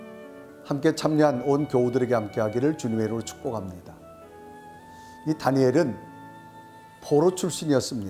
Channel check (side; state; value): both; identical; correlation 1.00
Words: 함께 참여한 온 교우들에게 함께하기를 주님의 이름으로 축복합니다. 이 다니엘은 포로